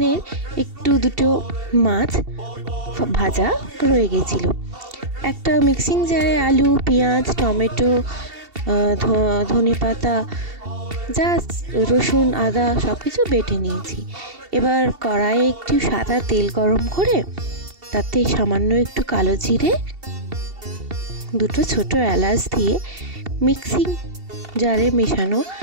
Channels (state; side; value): late; left; 2.7 ms